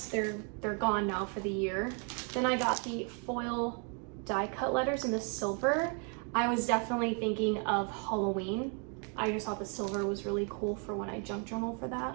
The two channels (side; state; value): left; quieter; 38.6 dB